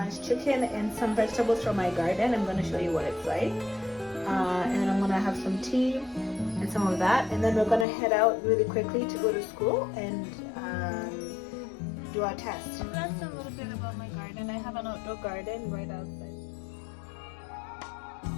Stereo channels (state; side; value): drops out; right; at 7.9 s